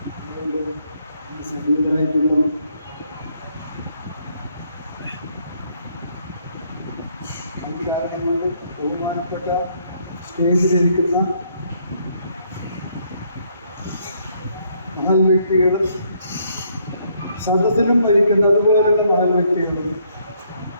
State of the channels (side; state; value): both; inverted; correlation -0.70